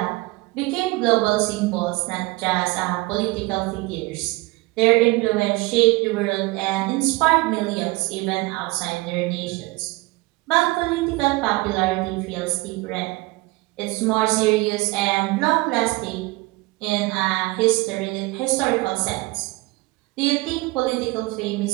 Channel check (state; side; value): quieter; left; 22.6 dB